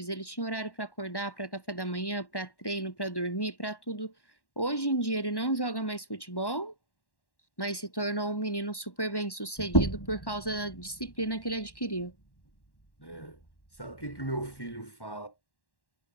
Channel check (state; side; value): late; right; 1.1 ms